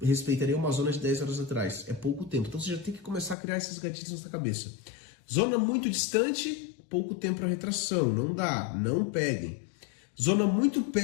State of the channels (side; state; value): right; drops out; at 3.4 s